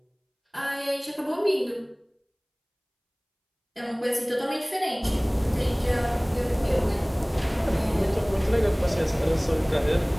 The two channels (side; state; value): both; identical; correlation 1.00